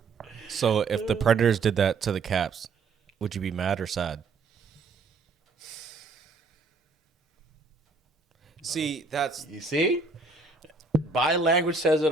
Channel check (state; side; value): quieter; left; 4.2 dB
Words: So if the Predators did that to the Caps, would you be mad or sad? See, that's You see? Body language says it